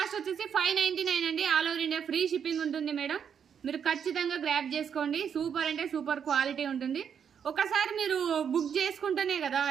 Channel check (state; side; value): quieter; left; 7.7 dB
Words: వచ్చేసి 599 అండి. All over India free shipping ఉంటుంది మేడం. మీరు ఖచ్చితంగా గ్రాప్ చేసుకోండి. సూపర్ అంటే సూపర్ క్వాలిటీ ఉంటుంది. ఒకసారి మీరు బుక్ చేసుకుంటేనే కదా